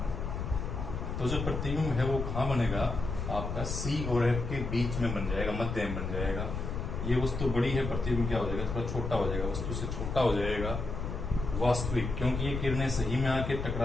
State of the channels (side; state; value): left; noise; rumble, 4 dB below the sound